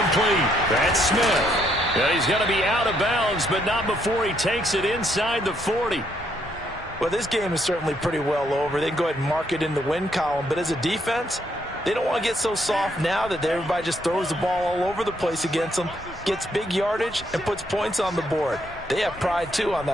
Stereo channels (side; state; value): both; normal; correlation 0.73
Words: That's Smith. And he's going to be out of bounds, but not before he takes it inside the 40. Well, this game is certainly pretty well over. They can go ahead and mark it in the win column. But as a defense, they don't want to get so soft now that everybody just throws the ball all over the place against them, gets big yardage, and puts points on the board. They have pride, too, on